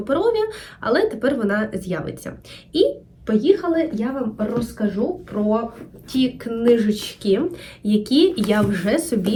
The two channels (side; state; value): both; identical; correlation 1.00